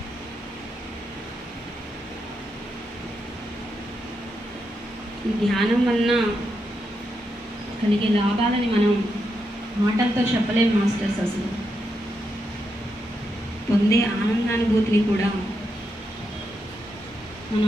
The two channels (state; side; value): normal; both; correlation 0.83